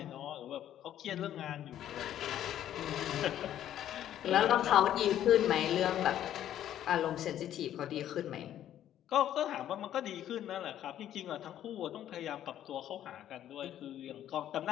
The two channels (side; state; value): right; quieter; 11.4 dB